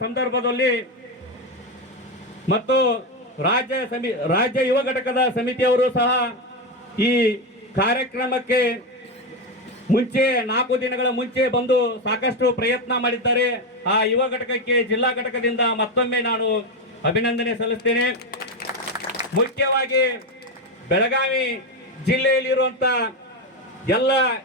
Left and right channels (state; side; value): normal; both; correlation 0.11